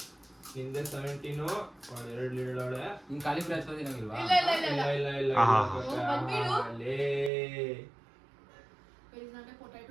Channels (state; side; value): drops out; left; at 7.3 s